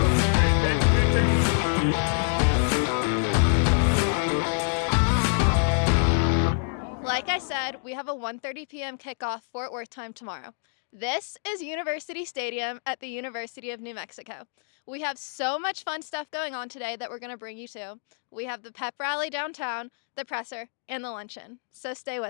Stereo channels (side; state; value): right; silent; digital silence